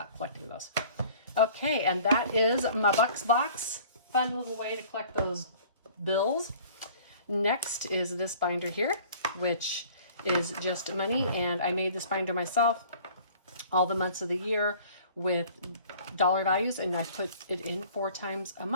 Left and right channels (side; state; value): both; inverted; correlation -0.50